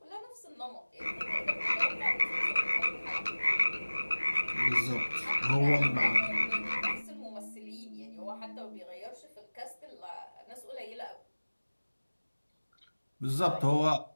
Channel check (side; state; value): both; inverted; correlation -1.00